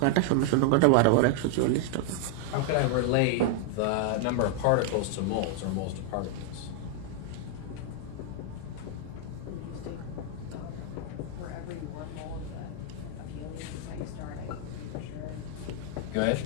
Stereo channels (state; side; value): different; both; correlation 0.00